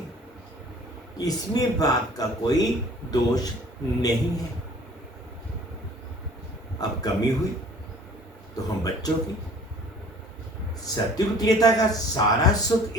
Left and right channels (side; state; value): both; normal; correlation 0.50